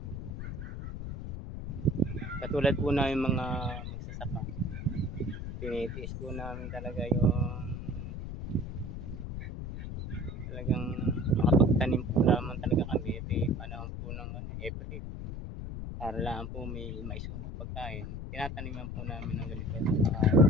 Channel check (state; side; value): noise; left; rumble, 7 dB below the sound